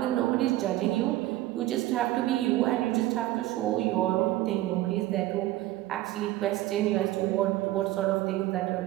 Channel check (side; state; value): left; quieter; 16.0 dB